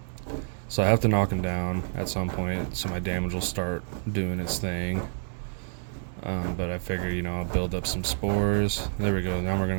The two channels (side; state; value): left; silent; 58 dB below the other